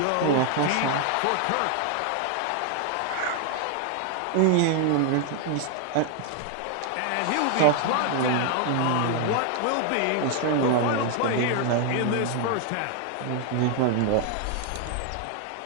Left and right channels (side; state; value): both; different; correlation 0.00